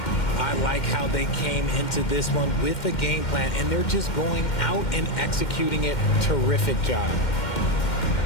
I like how they came into this one with a game plan, and they're just going out and executing it. Terrific job.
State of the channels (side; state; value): right; late; 2.1 ms